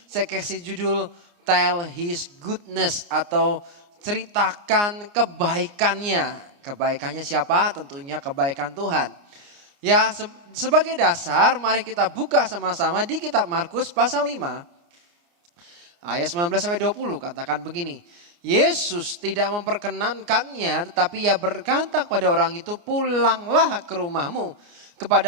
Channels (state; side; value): late; left; 29 ms